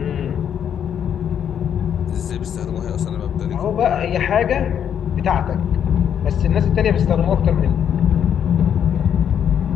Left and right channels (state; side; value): quieter; right; 8.8 dB